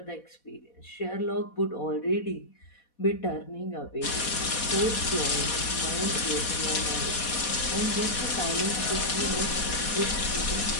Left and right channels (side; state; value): right; late; 4.1 ms